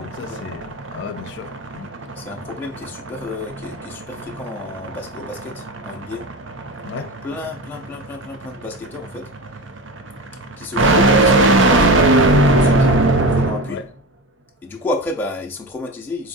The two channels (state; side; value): normal; both; correlation 0.25